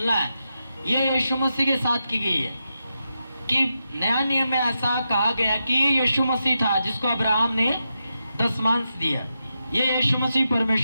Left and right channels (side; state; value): both; inverted; correlation -0.87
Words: है, यह यीशु मसीह के साथ की गई है। कि नया नियम में ऐसा कहा गया कि ये यीशु मसीह था जिसको अब्राहम ने दशमांश दिया। ये यीशु मसीह